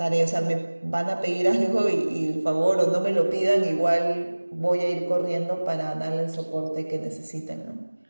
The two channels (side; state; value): both; inverted; correlation -1.00